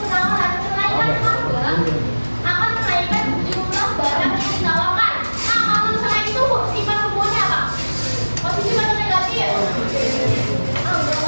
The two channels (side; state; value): both; inverted; correlation -1.00